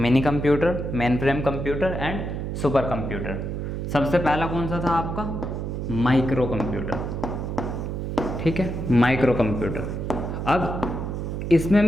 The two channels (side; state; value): right; noise; hum, 4 dB below the sound